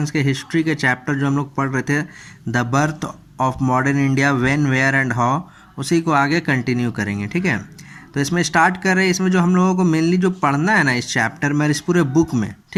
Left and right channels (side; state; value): both; identical; correlation 1.00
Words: के हिस्ट्री के चैप्टर जो हम लोग पढ़ रहे थे the birth of modern India when where and how, उसी को आगे कंटिन्यू करेंगे। ठीक है, तो इसमें स्टार्ट कर रहे हैं। इसमें जो हम लोगों को मेनली जो पढ़ना है ना इस चैप्टर में, इस पूरे बुक में,